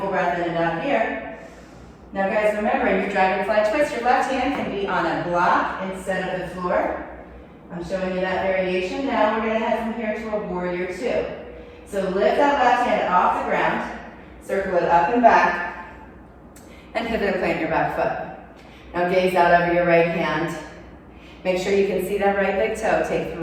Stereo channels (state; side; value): identical; both; correlation 1.00